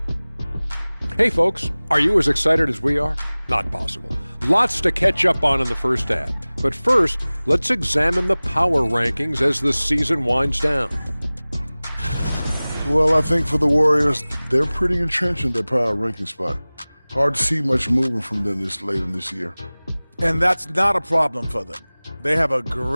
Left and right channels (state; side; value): inverted; both; correlation -0.99